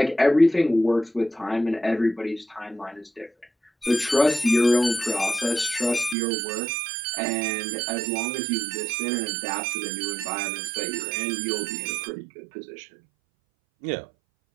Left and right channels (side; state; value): left; drops out; at 6.2 s